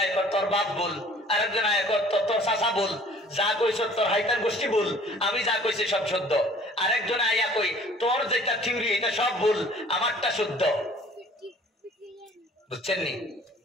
কর তোর বাপ বল, আরেকজন আয়া কর তোর চাচা বল, যা কইছ তোর হাইতার গোষ্ঠী বল, আমি যা কইছি সব শুদ্ধ। আরেকজন আয়া কই তোর যেটা থিওরি এটা সব ভুল, আমারটা শুদ্ধ। বুঝছেন নি?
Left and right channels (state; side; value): normal; both; correlation 0.52